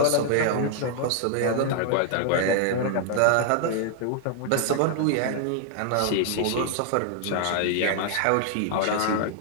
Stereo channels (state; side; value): different; both; correlation 0.00